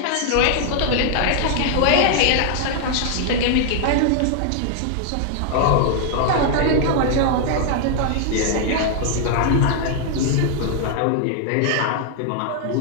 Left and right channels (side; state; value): both; different; correlation 0.00